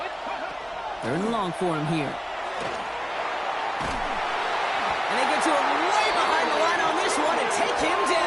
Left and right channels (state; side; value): identical; both; correlation 1.00